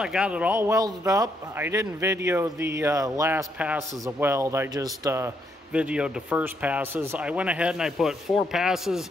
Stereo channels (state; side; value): normal; both; correlation 0.76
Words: got it all welded up. I didn't video the last passes of weld. I just videoed the first passes. I went ahead and I put 4 passes